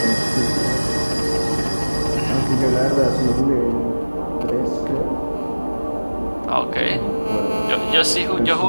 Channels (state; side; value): inverted; both; correlation -1.00